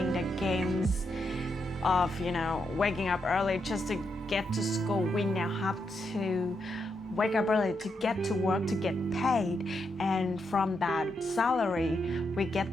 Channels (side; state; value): both; normal; correlation 0.82